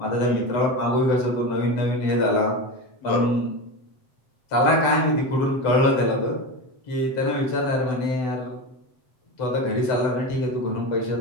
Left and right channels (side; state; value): right; late; 7.9 ms